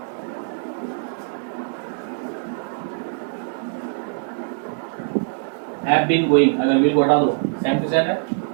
हैव बीन गोइंग, अगर विल को हटा दो सेम टू सेम है,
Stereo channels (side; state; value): left; silent; digital silence